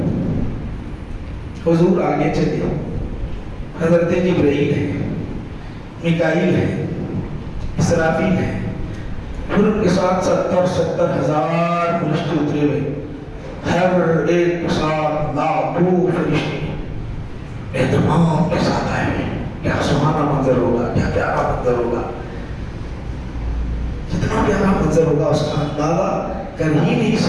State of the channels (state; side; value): identical; both; correlation 1.00